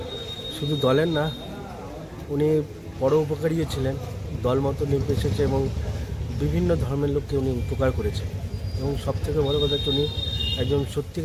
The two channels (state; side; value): identical; both; correlation 1.00